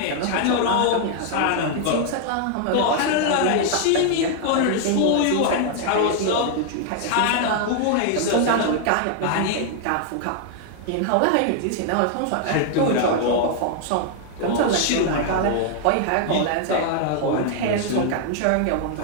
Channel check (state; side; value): different; both; correlation 0.00